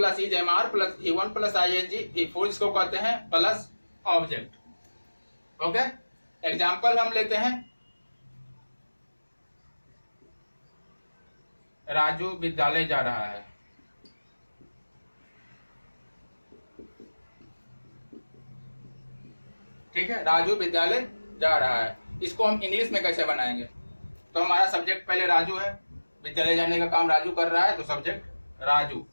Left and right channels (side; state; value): both; inverted; correlation -1.00